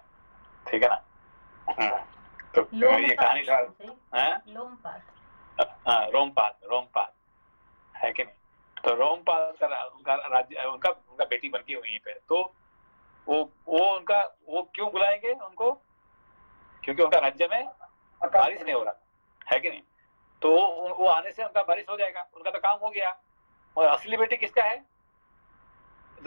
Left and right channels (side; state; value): both; inverted; correlation -1.00